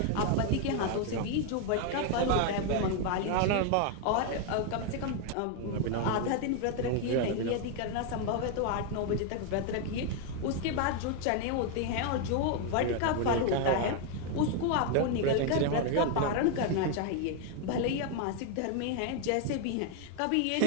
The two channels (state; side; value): different; both; correlation 0.01